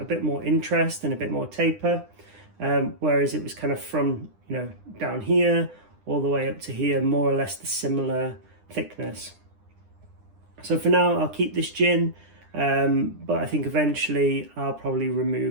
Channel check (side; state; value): left; late; 9.9 ms